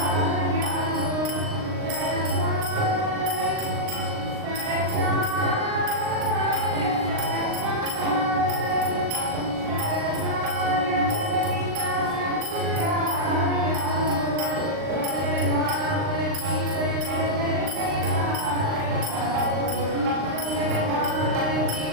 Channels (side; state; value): left; late; 39 ms